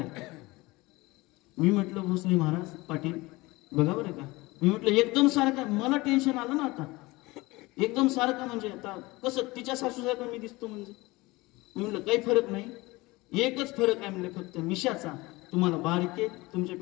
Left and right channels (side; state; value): right; quieter; 21.8 dB